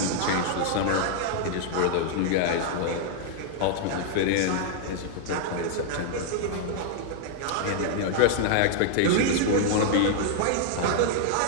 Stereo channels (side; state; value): both; different; correlation -0.01